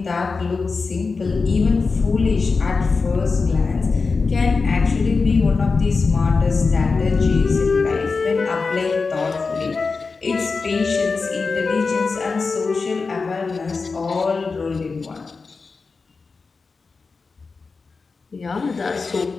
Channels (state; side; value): quieter; right; 4.4 dB